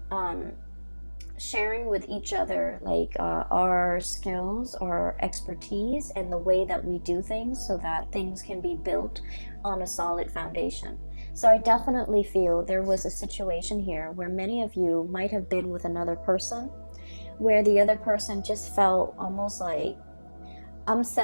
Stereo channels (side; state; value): both; inverted; correlation -1.00